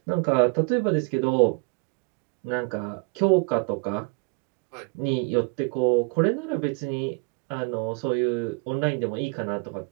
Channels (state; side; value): quieter; left; 33.6 dB